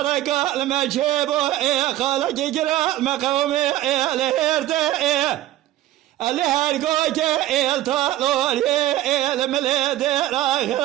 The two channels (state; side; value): quieter; left; 14.7 dB